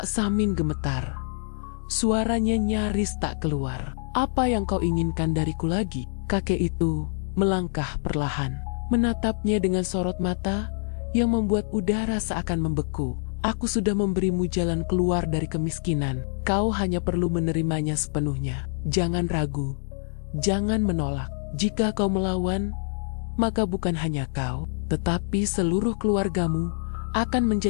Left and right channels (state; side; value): silent; right; digital silence